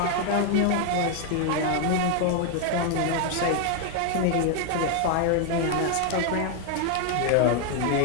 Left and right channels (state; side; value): different; both; correlation 0.00